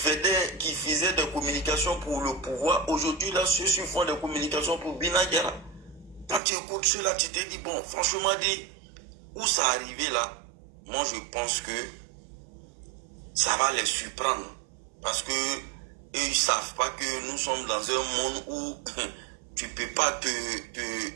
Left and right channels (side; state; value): left; drops out; at 6.4 s